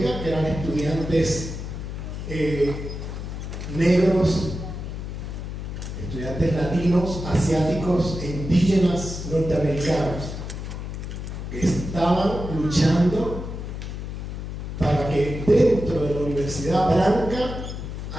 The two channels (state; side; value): noise; left; hum, 7 dB below the sound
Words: que eran estudiantes negros, estudiantes latinos, asiáticos e indígenas norteamericanos, que estaban luchando para que dentro de la Universidad Blanca